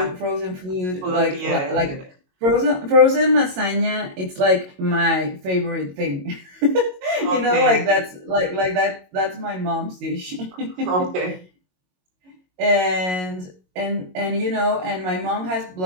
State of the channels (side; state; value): left; late; 22 ms